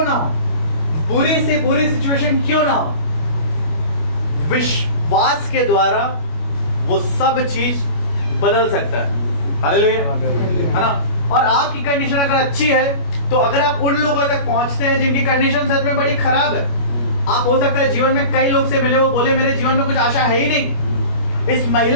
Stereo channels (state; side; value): late; right; 25 ms